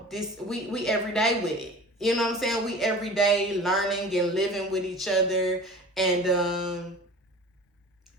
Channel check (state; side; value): normal; both; correlation 0.40